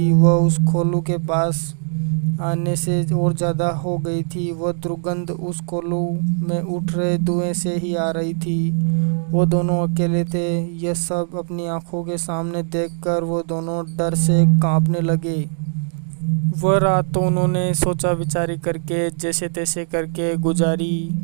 वह उस कोलू के पास आने से और ज़्यादा हो गई थी। वह दुर्गंध उस कोलू में उठ रहे धुएं से ही आ रही थी। वो दोनों अकेले थे। यह सब अपनी आंखों के सामने देखकर वो दोनों डर से कांपने लगे। वह रात तो उन्होंने सोचा विचारी करके जैसे तैसे करके गुजारी।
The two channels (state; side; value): silent; left; 58 dB below the other